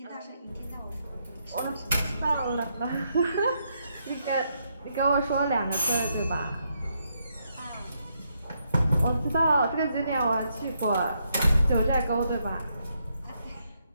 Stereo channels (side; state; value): both; inverted; correlation -0.78